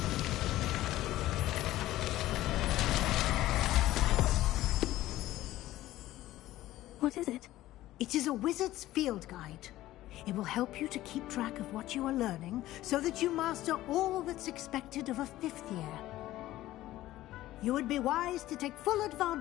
What is it? It is a wizard's field guide. It will help you to keep track of what you are learning so that you master all that's expected of a 5th year. You would be wise to take full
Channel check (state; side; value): quieter; right; 15.4 dB